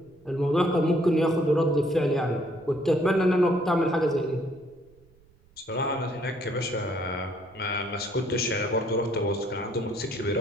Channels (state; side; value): noise; right; rumble, 30 dB below the sound